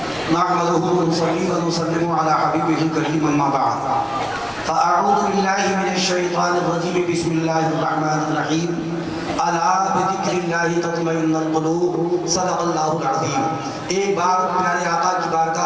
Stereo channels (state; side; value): identical; both; correlation 1.00